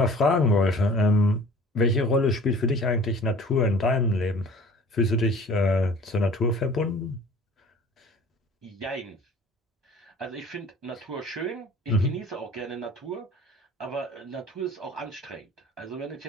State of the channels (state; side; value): normal; both; correlation 0.47